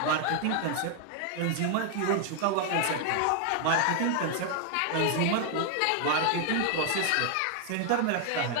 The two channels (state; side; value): different; both; correlation 0.00